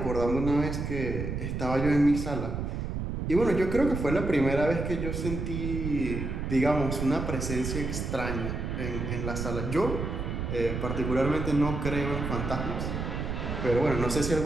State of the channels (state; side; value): noise; right; rumble, 3 dB below the sound